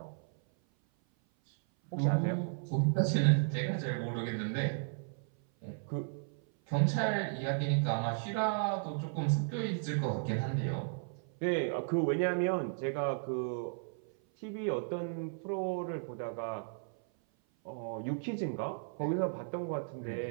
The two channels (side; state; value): left; silent; 55 dB below the other